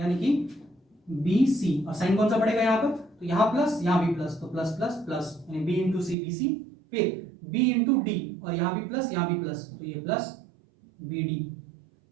कि bc, और साइन कौन सा पड़ेगा यहाँ पर, तो यहाँ प्लस यहाँ भी प्लस, तो प्लस प्लस प्लस, यानी b * c bc, फिर b * d और यहाँ भी प्लस यहाँ भी प्लस, तो ये प्लस bd।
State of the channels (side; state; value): left; drops out; at 6.2 s